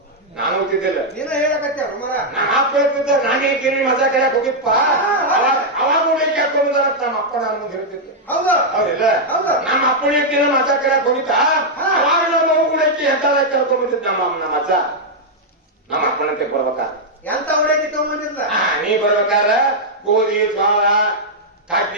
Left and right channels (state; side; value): normal; both; correlation -0.03